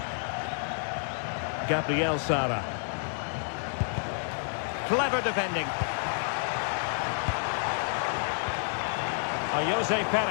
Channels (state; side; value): silent; right; 58 dB below the other